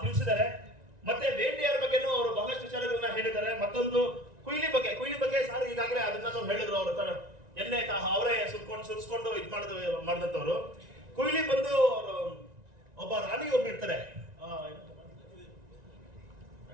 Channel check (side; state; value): left; late; 1.9 ms